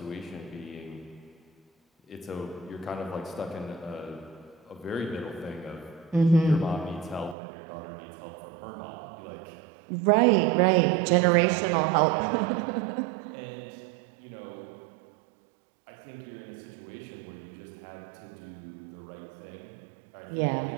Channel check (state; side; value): drops out; left; at 7.4 s